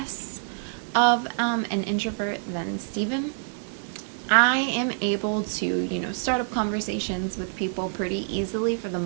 of an introvert than Steven. I am able to, start up conversations with people pretty easily for the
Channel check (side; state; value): left; silent; 60 dB below the other